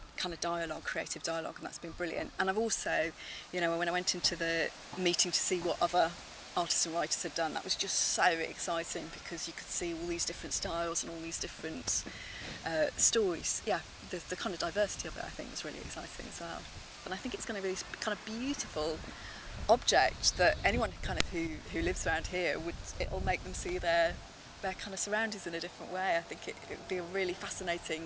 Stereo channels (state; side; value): identical; both; correlation 1.00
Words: kind of dialogue, creative dialogue, and that's been brilliant. And I've also, you know, when I went into the meeting to see what other artists and writers had done, that was just so exciting because you could see all these different styles and all these different stories. Yeah, the kind of diversity of it, I think, was really exciting as well. And I think it's going to be this kind of beautiful object that anyone kind of who lives around here it'll make them see their kind of surroundings in a different way. I think it would be a really